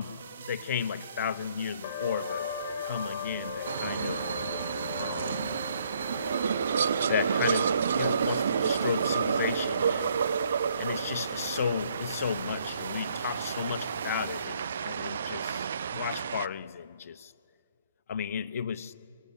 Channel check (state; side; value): inverted; both; correlation -0.66